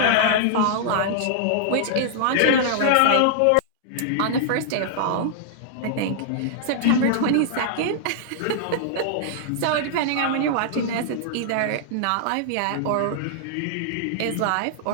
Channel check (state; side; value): different; both; correlation -0.01